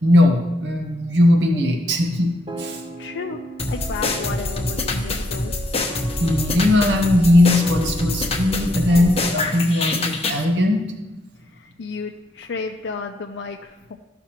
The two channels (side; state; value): both; normal; correlation 0.77